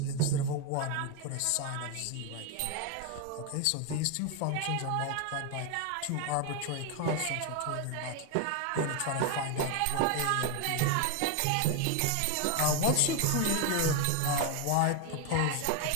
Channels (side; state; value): both; different; correlation 0.01